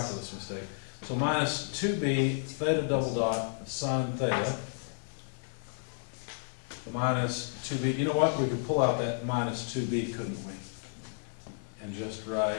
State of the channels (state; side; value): silent; right; digital silence